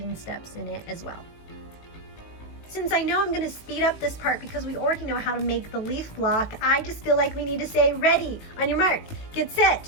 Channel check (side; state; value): right; late; 18 ms